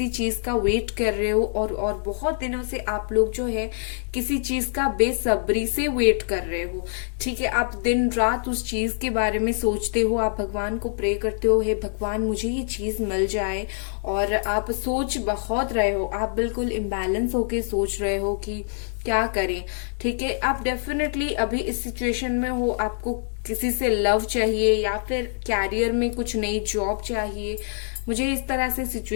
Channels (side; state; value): right; silent; digital silence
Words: चीज का वेट कर रहे हो और बहुत दिनों से आप लोग जो है किसी चीज का बेसब्री से वेट कर रहे हो। ठीक है, आप दिन रात उस चीज के बारे में सोचते हो, आप भगवान को प्रे करते हो, हे भगवान मुझे ये चीज मिल जाए। और आप सोच बहुत रहे हो, आप बिल्कुल इम्बैलेंस होके सोच रहे हो कि क्या करें। ठीक है, आप डेफिनेटली अभी इस सिचुएशन में हो, आपको किसी से लव चाहिए या फिर कैरियर में कुछ नई जॉब चाहिए। मुझे इस तरह से